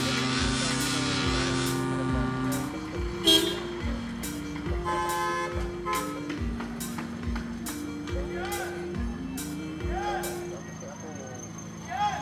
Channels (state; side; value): identical; both; correlation 1.00